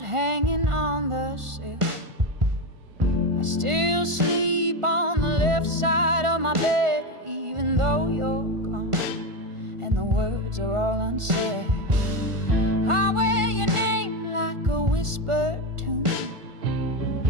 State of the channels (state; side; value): late; left; 1.5 ms